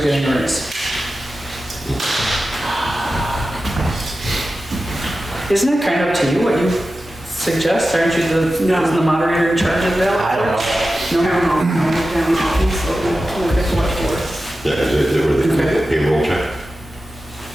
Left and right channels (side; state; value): both; normal; correlation 0.93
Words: getting a raise. Isn't it kind of up to you what you suggest? Aren't you the moderator in charge of that? I don't know. Yeah, they were the payroll check.